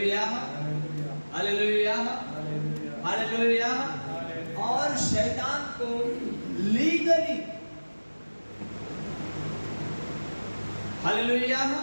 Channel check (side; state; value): both; inverted; correlation -1.00